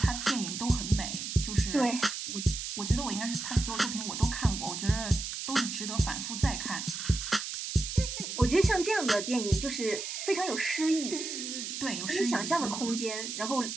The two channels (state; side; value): noise; right; hiss, 5 dB below the sound